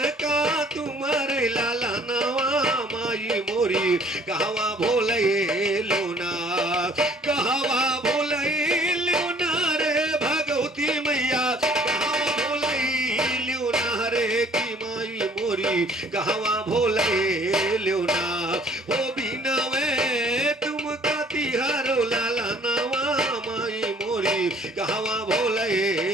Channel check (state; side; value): normal; both; correlation 0.56